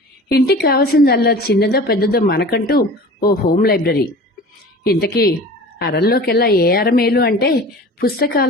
ఇంటికి కావాల్సిందల్లా చిన్నదో పెద్దదో మనకంటూ ఓ హోమ్ లైబ్రరీ. ఇంతకీ అరల్లోకెల్లా ఏ అర మేలు అంటే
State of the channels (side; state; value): both; normal; correlation 0.39